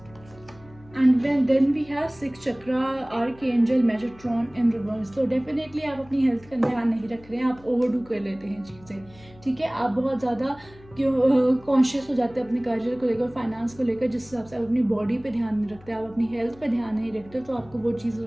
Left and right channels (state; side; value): noise; left; hum, 23 dB below the sound